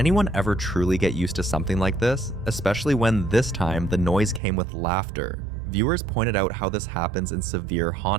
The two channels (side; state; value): left; drops out; at 4.4 s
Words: ever truly get used to something like this? Especially when this time the noise came with laughter, Viewers pointed out how this happens in severe